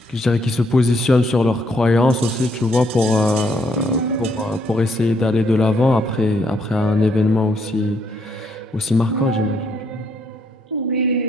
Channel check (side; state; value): both; normal; correlation 0.72